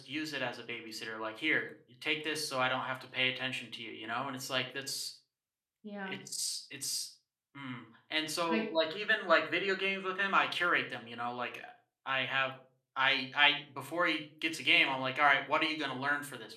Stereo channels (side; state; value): both; identical; correlation 1.00